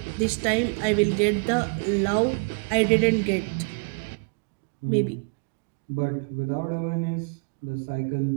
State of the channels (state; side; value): quieter; left; 37.9 dB